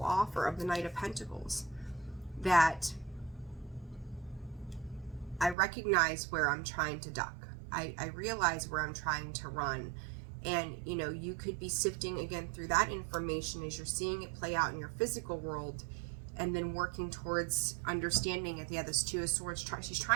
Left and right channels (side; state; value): left; drops out; at 5.6 s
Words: offer of the Knight of Pentacles, that I recognize where I'm trying to duck. I realize where I'm trying to run. And, you know, you could be sifting again through that information as you're seeing it play out in your physical world, and then working towards understanding it. Yeah, this Two of Swords, she's